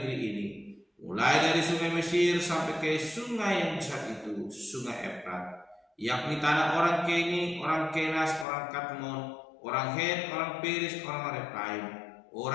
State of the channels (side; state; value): right; drops out; at 8.5 s